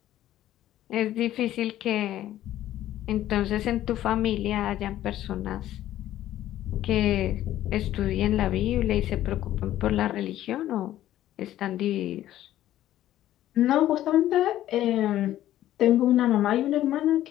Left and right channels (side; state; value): right; quieter; 13.2 dB